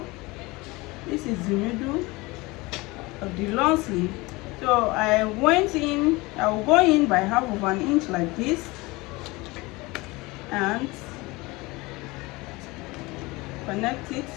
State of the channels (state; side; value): quieter; right; 23.0 dB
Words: This is the middle of the long sleeve. So I went in, I will go in by half of an inch like this, and connect it